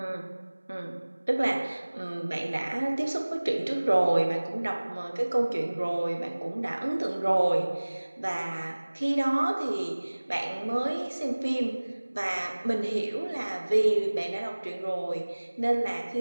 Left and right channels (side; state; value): both; inverted; correlation -1.00